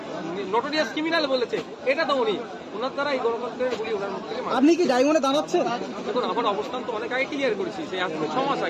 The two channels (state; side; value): identical; both; correlation 1.00